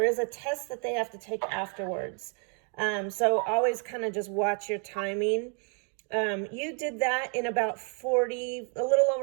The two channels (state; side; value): quieter; left; 38.5 dB